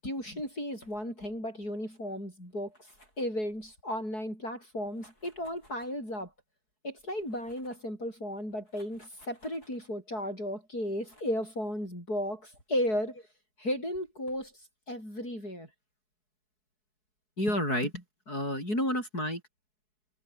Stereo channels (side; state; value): right; late; 4.7 ms